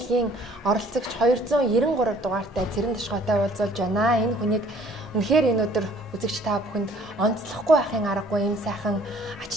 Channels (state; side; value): normal; both; correlation 0.56